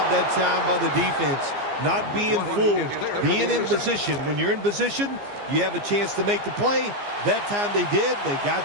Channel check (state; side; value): late; left; 15 ms